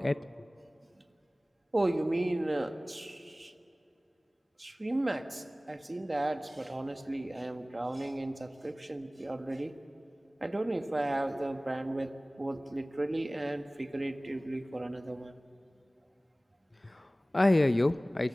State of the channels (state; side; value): normal; both; correlation 0.98